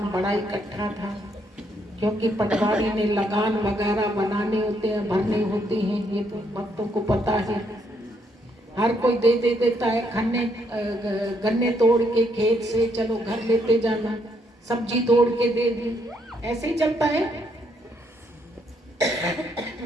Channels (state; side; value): normal; both; correlation 0.73